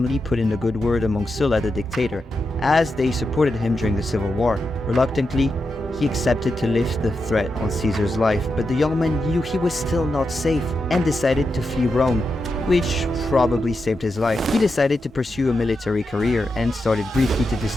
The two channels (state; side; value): normal; both; correlation 0.87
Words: put in a good word among Sulla the dictator, as they supported him during the civil war. Reluctantly, he accepted to lift the threat on Caesar's life, but the young man knew he was still not safe and decided to flee Rome, which probably saved his life. He decided to pursue a military career and started briefly to